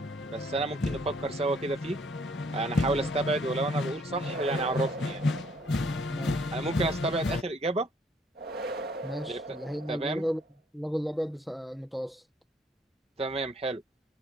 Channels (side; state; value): both; normal; correlation 0.64